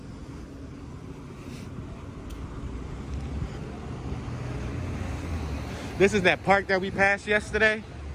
This is that park that we passed yesterday.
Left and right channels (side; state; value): both; identical; correlation 1.00